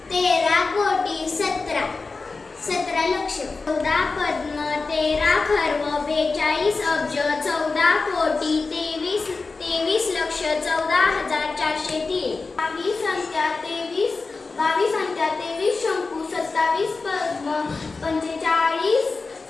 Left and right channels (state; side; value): quieter; right; 4.0 dB